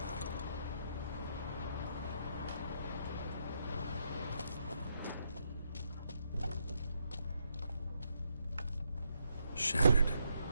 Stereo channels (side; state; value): both; inverted; correlation -0.78